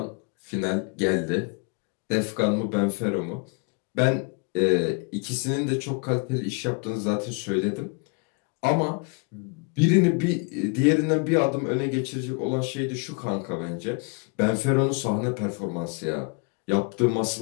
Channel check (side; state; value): right; quieter; 33.7 dB